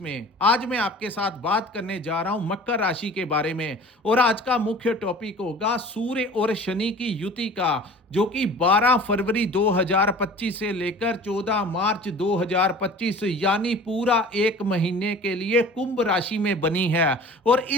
आज मैं आपके साथ बात करने जा रहा हूं मकर राशि के बारे में और आज का मुख्य टॉपिक होगा सूर्य और शनि की युति का, जो कि 12 फरवरी 2025 से लेकर 14 मार्च 2025 यानी पूरा एक महीने के लिए कुंभ राशि में बनी है। और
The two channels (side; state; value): both; normal; correlation 0.43